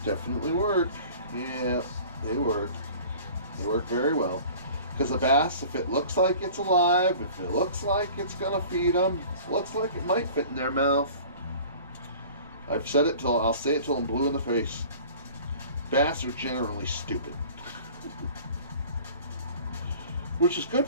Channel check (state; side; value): inverted; both; correlation -0.44